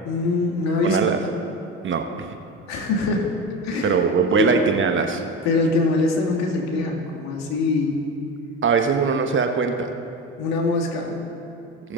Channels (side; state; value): both; normal; correlation 0.24